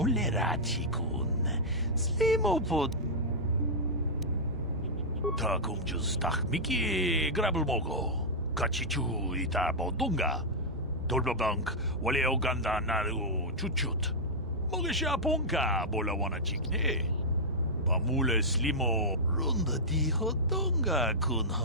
슬리모포 타공주스 딱미키 그랍을 먹고 같이 주이다 보던가 돌바방k 원래 오간다 나루 추추 먹으셔 본가 몰라와나 찍네 바물레 슬리모 론다 디호던가 군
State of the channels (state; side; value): normal; both; correlation -0.09